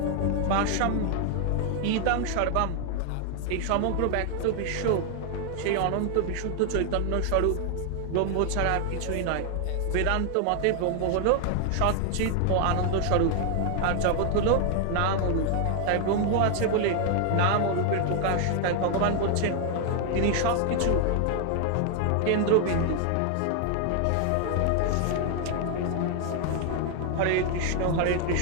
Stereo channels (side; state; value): both; different; correlation 0.00